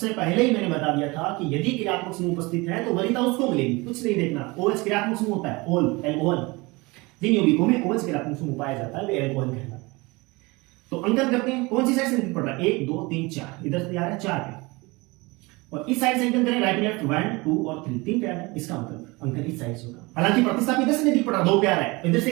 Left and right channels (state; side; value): quieter; left; 24.4 dB